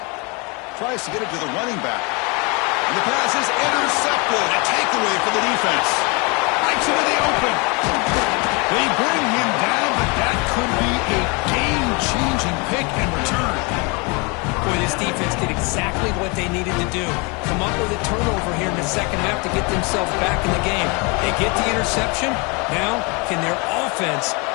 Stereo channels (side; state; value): right; quieter; 30.1 dB